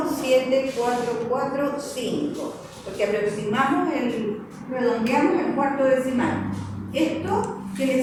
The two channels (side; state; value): both; identical; correlation 1.00